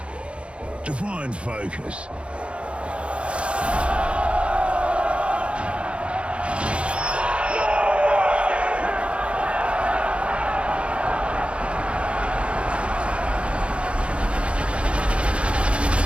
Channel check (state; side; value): late; left; 0.059 ms